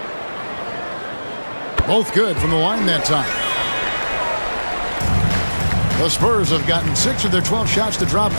Both good from the line that time. The Spurs have gotten 6 of their 12 shots to drop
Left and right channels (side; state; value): both; inverted; correlation -1.00